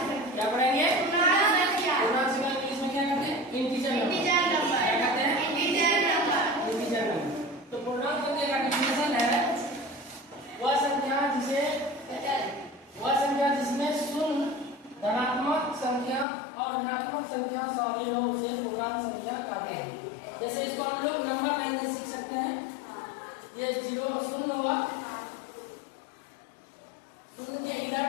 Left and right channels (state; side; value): drops out; right; at 16.2 s